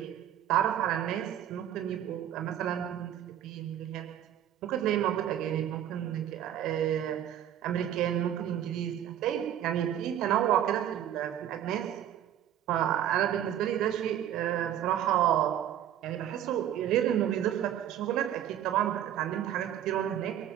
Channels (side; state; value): left; quieter; 10.8 dB